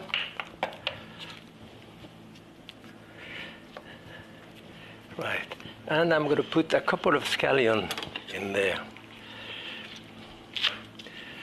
right, and I'm going to put a couple of scallions in there.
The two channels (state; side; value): identical; both; correlation 1.00